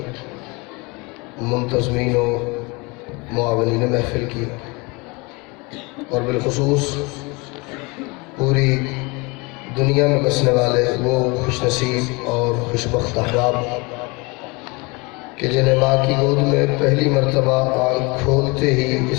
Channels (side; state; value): right; quieter; 27.1 dB